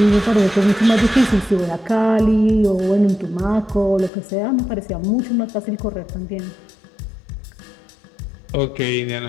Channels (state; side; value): drops out; right; at 4.1 s